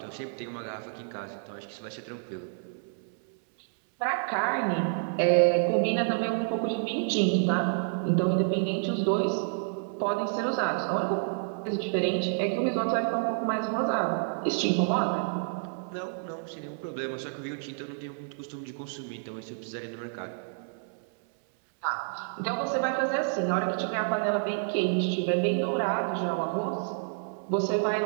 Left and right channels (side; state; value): left; silent; 58 dB below the other